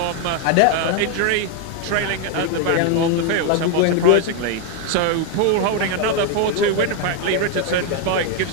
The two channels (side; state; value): both; different; correlation 0.01